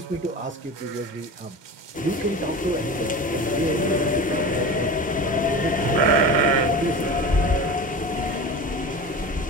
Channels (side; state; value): both; normal; correlation 0.31